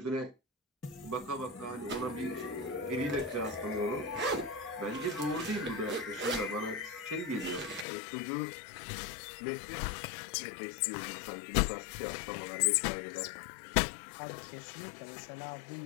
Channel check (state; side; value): drops out; right; at 7.9 s